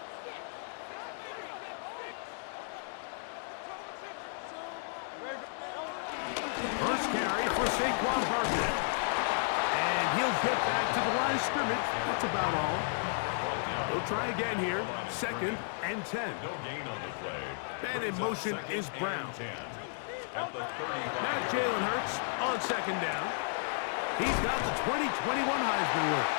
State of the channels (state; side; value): silent; right; digital silence